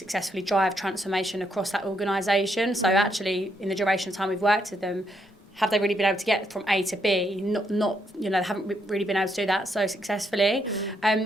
drive transformation across that organisation. So actually, in the duration of time we've worked with them, have they really been able to get from A to B? Not they haven't really been able to do that so successfully.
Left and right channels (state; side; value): normal; both; correlation 0.76